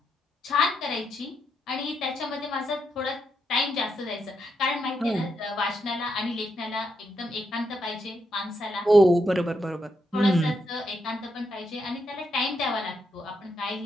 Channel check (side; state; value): both; normal; correlation 0.81